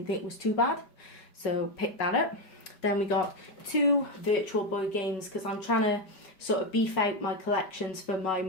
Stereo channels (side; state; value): right; late; 5.0 ms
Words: think was too bad, so picked that up. Then we got 2 Virtual Boy games, because I'm trying to sort of beef out my collections for my